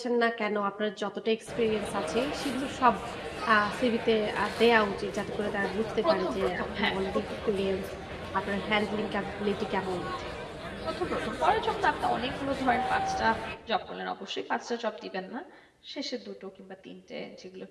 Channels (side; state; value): both; identical; correlation 1.00